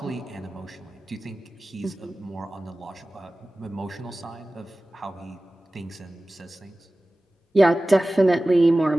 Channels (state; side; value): normal; both; correlation 0.97